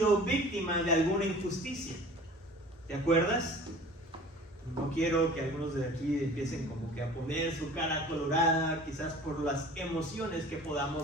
víctima de alguna injusticia? ¿Te acuerdas? No quiero que algunos de aquí empiecen como que a poner su cara colorada, quizás por las emociones que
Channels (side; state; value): both; normal; correlation 0.44